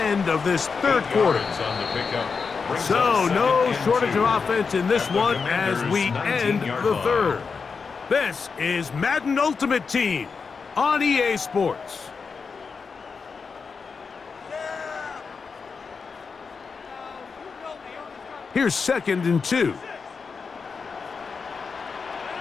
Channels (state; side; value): quieter; right; 5.2 dB